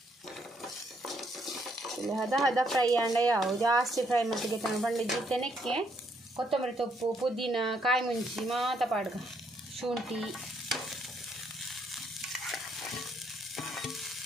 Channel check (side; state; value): both; normal; correlation 0.72